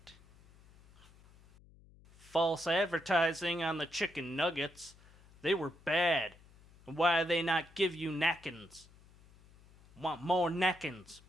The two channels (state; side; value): noise; left; hum, 25 dB below the sound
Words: False advertising on the chicken nuggets. They were bad. And why they not give you napkins? Want more napkins,